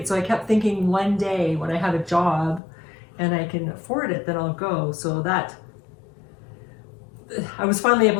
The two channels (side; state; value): right; drops out; at 2.6 s